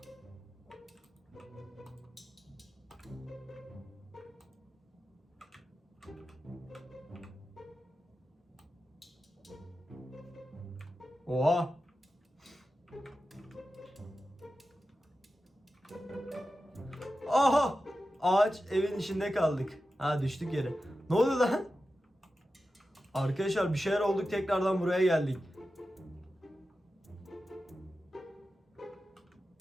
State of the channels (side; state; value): both; normal; correlation 0.92